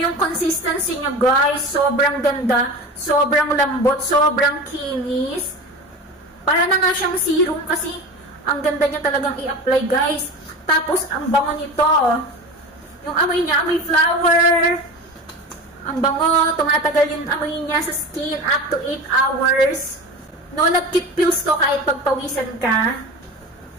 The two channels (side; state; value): both; normal; correlation 0.31